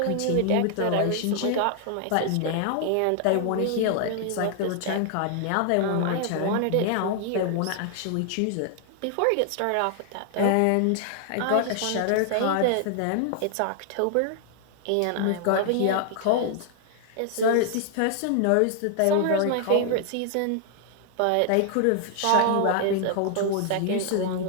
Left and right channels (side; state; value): both; different; correlation 0.00